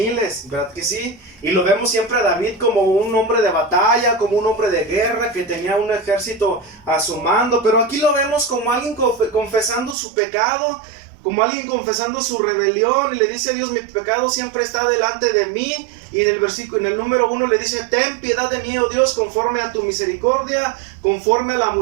¿verdad que sí? Y lo vemos siempre a David como un hombre de batalla, como un hombre de guerra que tenía un ejército a su mando. Pero aquí lo vemos como alguien confesando su pecado, como alguien confesando su rebelión, y le dice a Dios: mi pecado siempre está delante de mí. Y en el número 1 le dice: ten piedad de mí, oh Dios, conforme a tu misericordia, conforme a la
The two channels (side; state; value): left; drops out; at 10.0 s